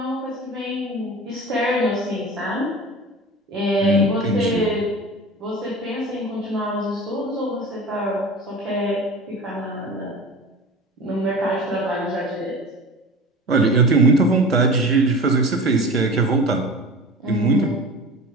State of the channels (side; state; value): both; normal; correlation 0.35